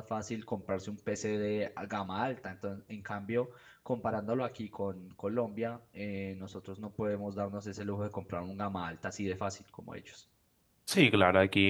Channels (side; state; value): both; identical; correlation 1.00